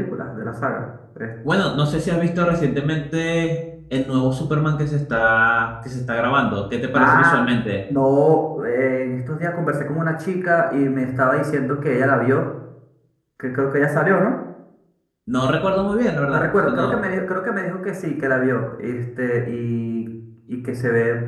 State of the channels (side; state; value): both; identical; correlation 1.00